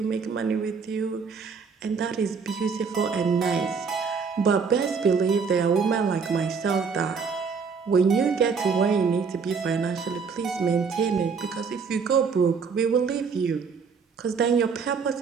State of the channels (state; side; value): quieter; left; 5.5 dB